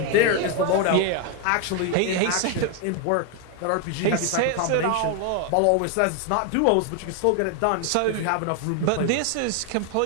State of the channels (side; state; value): both; different; correlation 0.01